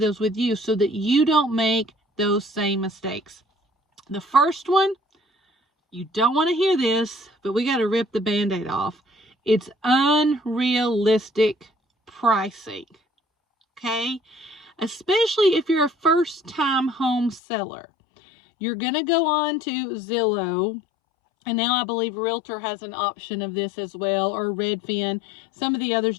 with you so that you don't make those same mistakes. The first one, you don't want to hear this, but we got to rip the Band-Aid off. It's unrealistic pricing, okay? Especially if you're a first-time home seller. You're going to go on to Zillow, and now I believe Realtor has an option of this as well, or Redfin. Some of the others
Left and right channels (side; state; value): right; drops out; at 17.4 s